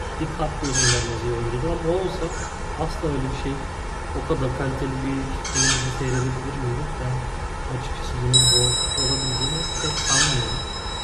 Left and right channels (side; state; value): both; identical; correlation 1.00